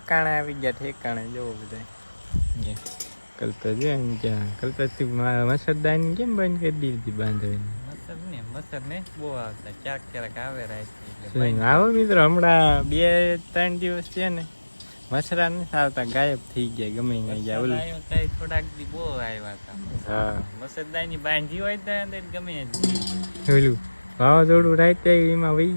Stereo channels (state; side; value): inverted; both; correlation -1.00